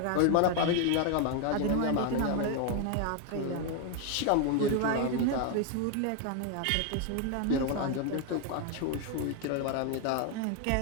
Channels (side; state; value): both; different; correlation 0.01